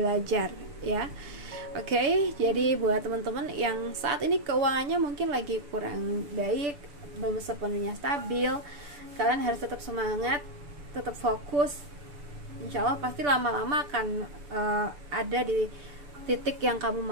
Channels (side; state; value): left; late; 6.9 ms